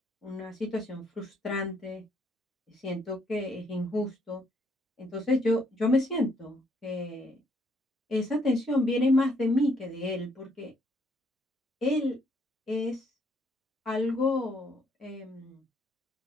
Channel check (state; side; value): normal; both; correlation 0.70